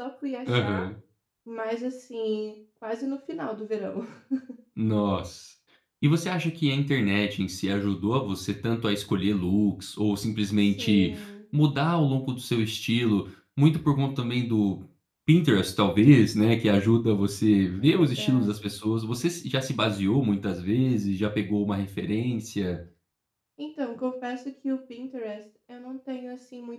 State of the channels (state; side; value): identical; both; correlation 1.00